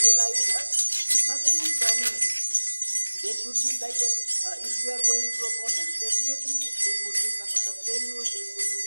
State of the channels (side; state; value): both; inverted; correlation -1.00